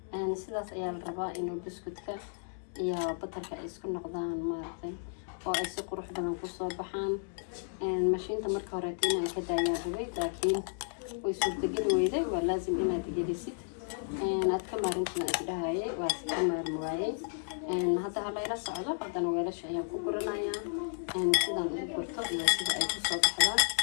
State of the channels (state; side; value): silent; right; digital silence